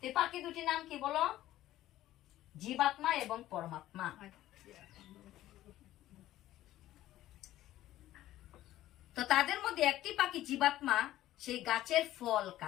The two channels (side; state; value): right; quieter; 14.4 dB